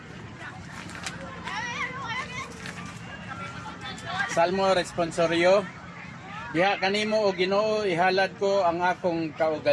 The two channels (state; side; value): identical; both; correlation 1.00